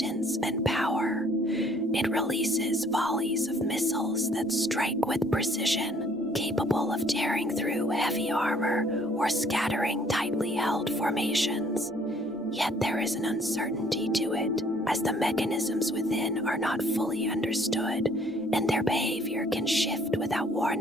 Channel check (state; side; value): noise; right; rumble, 29 dB below the sound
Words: and power. It releases volleys of missiles that strike with precision, capable of tearing through heavy armor or scattering tightly held formations. Yet there is an uncertainty to it, as the mechanisms within are not fully understood, and their behavior can shift without